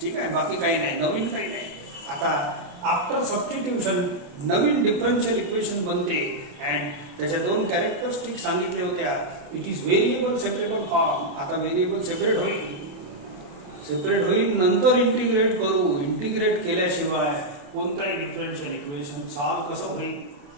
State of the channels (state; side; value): late; left; 28 ms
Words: आहे, बाकी काही नाही, नवीन काही नाही. आता आफ्टर सबस्टिट्यूशन नवीन डिफरन्शियल इक्वेशन बनते अँड त्याच्या दोन कॅरेक्टरिस्टिक सांगितले होत्या. It is variable separable form. आता व्हेरिएबल सेपरेट होईल नंतर इंटिग्रेट करू. इंटिग्रेट केल्याशिवाय कोणताही डिफरन्शियल इक्वेशन सॉल्व कसं होईल?